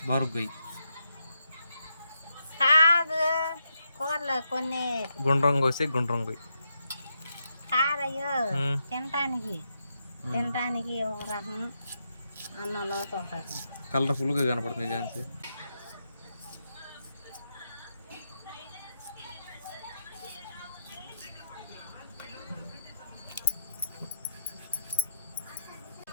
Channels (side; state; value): both; inverted; correlation -0.83